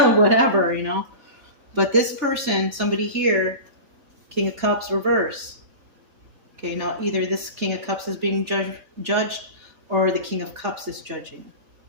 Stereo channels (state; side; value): late; left; 3.4 ms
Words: whatever, you know. But this person, somebody here, King of Cups reverse. Okay, now either this King of Cups is being judged or the King of Cups is judging.